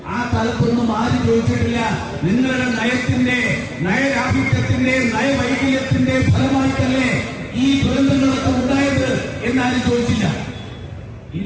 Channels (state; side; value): identical; both; correlation 1.00